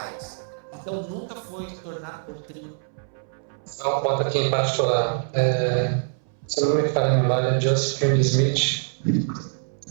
Então nunca foi tornado doutrina. Só um ponto aqui em particular. Se não me falha a memória, Joseph Smith,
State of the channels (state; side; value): silent; left; 62 dB below the other